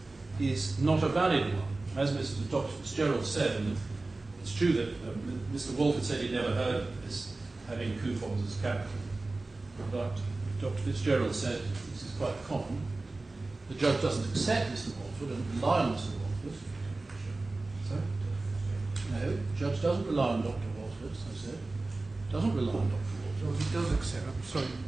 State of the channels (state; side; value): quieter; left; 3.2 dB